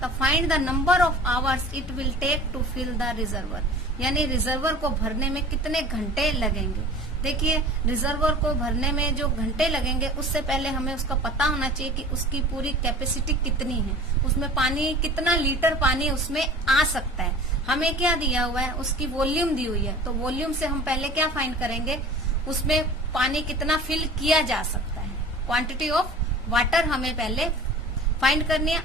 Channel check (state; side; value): normal; both; correlation 0.41